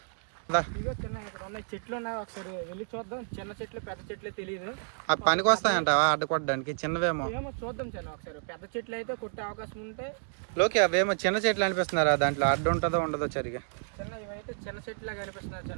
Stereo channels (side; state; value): left; silent; digital silence